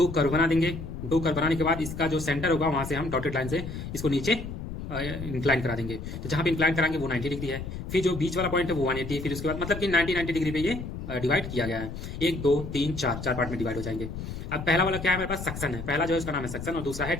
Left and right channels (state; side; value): noise; left; rumble, 8 dB below the sound